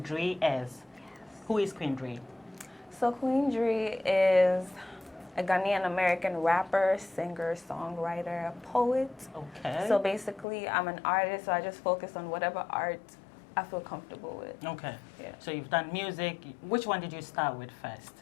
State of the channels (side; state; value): right; drops out; at 10.5 s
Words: Drie is. Who is Queen Drie? So Queen Drie is a Ghanaian American rapper, singer, songwriter, poet. Okay. So basically, I'm an artist, so I just focus on whatever art I feel comfortable with. Okay. Yeah. So you've done music. Which one did you start with first?